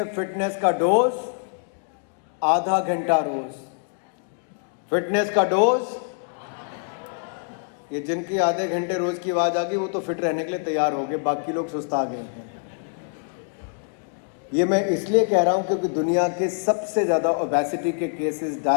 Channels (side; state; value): right; silent; digital silence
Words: फिटनेस का डोज आधा घंटा रोज। फिटनेस का डोज, ये जिनकी आधे घंटे रोज की आवाज आ गई वो तो फिट रहने के लिए तैयार हो गए, बाकी लोग सुस्ता गए हैं। ये मैं इसलिए कह रहा हूं क्योंकि दुनिया के सबसे ज़्यादा ओबेसिटी के केसेस,